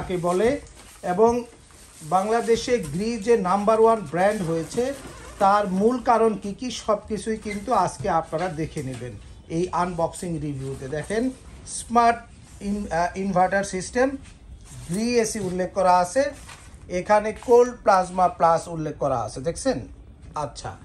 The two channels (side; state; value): both; identical; correlation 1.00